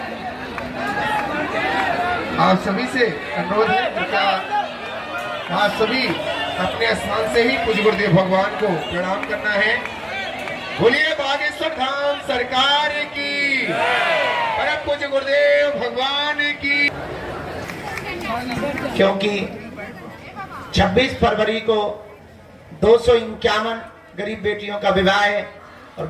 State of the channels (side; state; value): both; identical; correlation 1.00